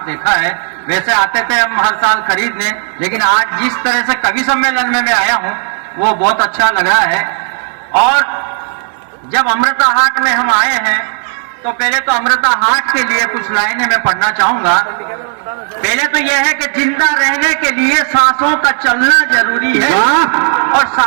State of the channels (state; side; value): silent; left; 63 dB below the other